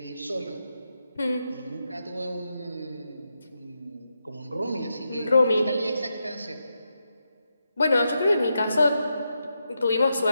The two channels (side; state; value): both; inverted; correlation -0.85